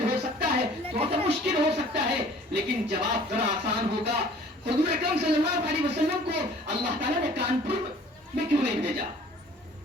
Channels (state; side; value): normal; both; correlation 0.51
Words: ہو سکتا ہے, تھوڑا سا مشکل ہو سکتا ہے, لیکن جواب ذرا آسان ہوگا. حضور اکرم صلی اللہ علیہ وسلم کو اللہ تعالیٰ نے کانپور میں کیوں نہیں بھیجا؟